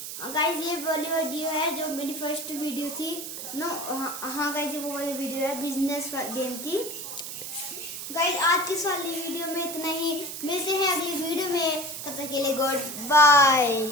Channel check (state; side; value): noise; right; hiss, 8 dB below the sound